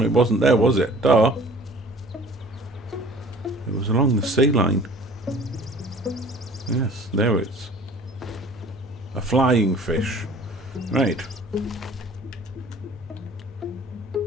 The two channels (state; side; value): normal; both; correlation 0.49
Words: it wasn't there, was it? Duh. It was along the sea line. Yes, there it's. A flying fish. Right.